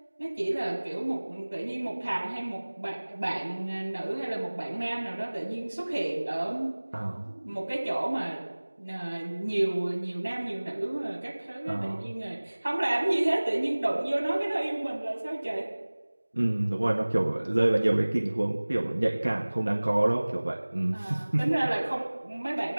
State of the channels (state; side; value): inverted; both; correlation -1.00